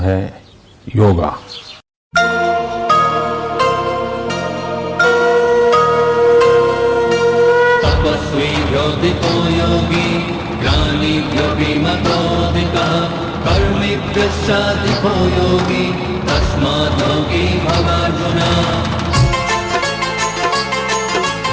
योगा। तपस्वीभ्योऽधिको योगी ज्ञानिभ्योऽपि मतोऽधिकः कर्मिभ्यश्चाधिको योगी तस्मात् योगी भवार्जुन।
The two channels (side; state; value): both; identical; correlation 1.00